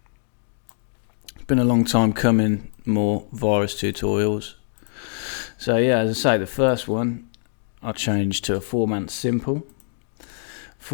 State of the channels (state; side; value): silent; right; digital silence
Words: It's been a long time coming, more Virus tutorials. So yeah, as I say, the first one I changed to a formant simple.